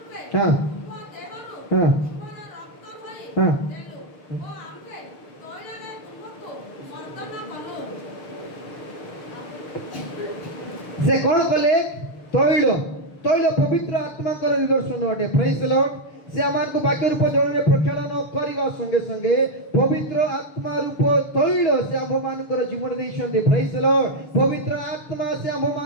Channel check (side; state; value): right; late; 6.6 ms